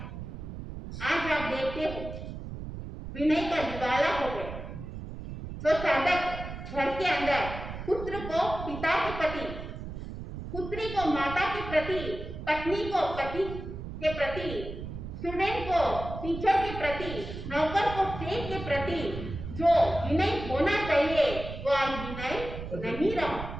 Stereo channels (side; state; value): right; noise; rumble, 9 dB below the sound